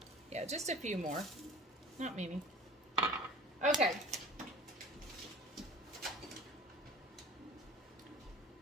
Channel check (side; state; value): both; normal; correlation 0.42